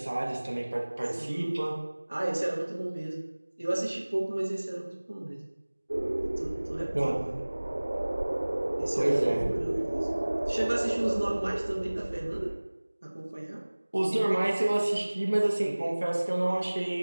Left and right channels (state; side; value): inverted; both; correlation -1.00